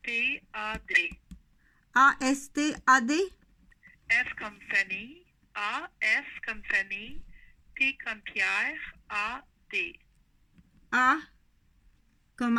A-S-T-A-D? F comme famille, A-S comme famille, P comme Pierre, A-D. A comme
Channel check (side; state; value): both; identical; correlation 1.00